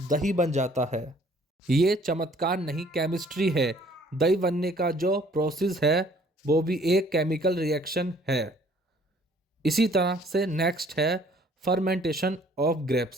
दही बन जाता है। ये चमत्कार नहीं, केमिस्ट्री है। दही बनने का जो प्रोसेस है वो भी एक केमिकल रिएक्शन है। इसी तरह से नेक्स्ट है फर्मेंटेशन ऑफ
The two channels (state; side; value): normal; both; correlation 0.58